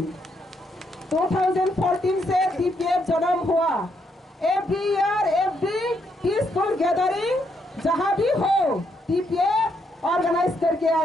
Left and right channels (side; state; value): both; normal; correlation 0.76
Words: 2014 से TPF जन्म हुआ, every year every peaceful gathering जहाँ भी हो TPF organise करके